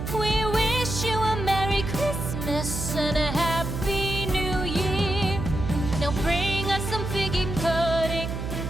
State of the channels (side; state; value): right; noise; hum, 4 dB below the sound